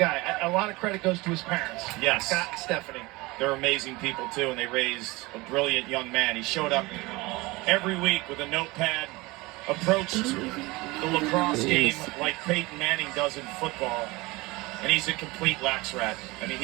A lot of credit goes to his parents. Yes. Scott and Stephanie. They're amazing people, too, and they raised a brilliant young man. He showed up every week with a notepad, approached the lacrosse game like Peyton Manning does in football, and he's a complete lax rat. I mean,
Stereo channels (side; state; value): left; quieter; 22.6 dB